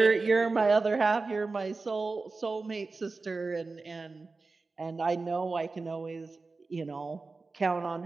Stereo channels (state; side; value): quieter; left; 3.9 dB